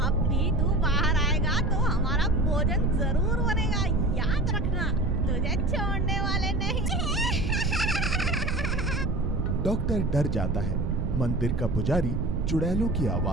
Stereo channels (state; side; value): noise; right; rumble, 1 dB below the sound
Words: भी तू बाहर आएगा तो हमारा भोजन जरूर बनेगा, याद रखना, तुझे छोड़ने वाले नहीं। डॉक्टर डर जाता है। मंदिर का पुजारी चुड़ैलों की